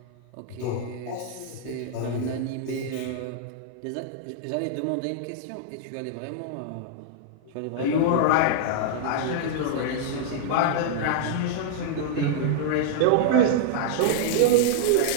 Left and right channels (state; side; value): different; both; correlation -0.01